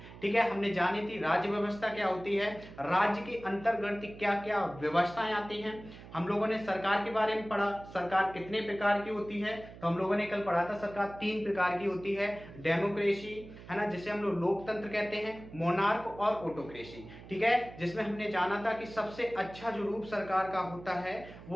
ठीक है, हमने जानी थी राज्य व्यवस्था क्या होती है, राज्य के अंतर्गत क्या क्या व्यवस्थाएं आती हैं। हम लोगों ने सरकार के बारे में पढ़ा, सरकार कितने प्रकार की होती है। तो हम लोगों ने कल पढ़ा था सरकार 3 प्रकार की होती है। डेमोक्रेसी है ना, जिसे हम लोग लोकतंत्र कहते हैं, मोनार्क और ऑटोक्रेसी। ठीक है, जिसमें हमने जाना था कि सबसे अच्छा जो रूप सरकार का होता है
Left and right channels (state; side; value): noise; right; hum, 16 dB below the sound